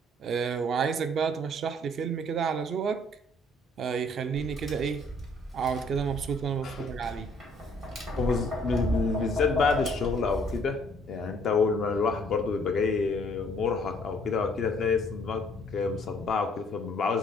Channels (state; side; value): normal; both; correlation 0.62